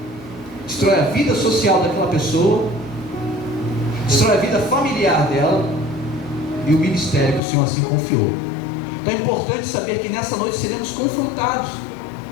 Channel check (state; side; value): drops out; right; at 7.4 s